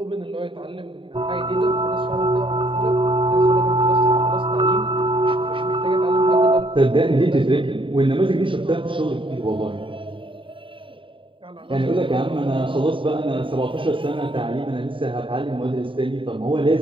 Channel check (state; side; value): late; left; 0.25 ms